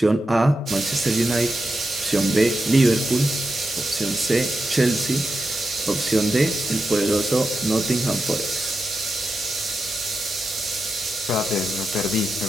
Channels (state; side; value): normal; both; correlation 0.88